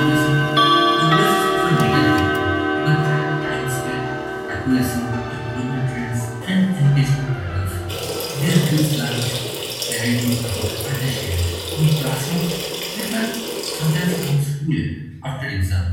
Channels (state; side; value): identical; both; correlation 1.00